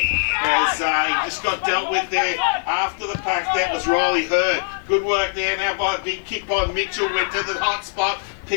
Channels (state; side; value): silent; right; 55 dB below the other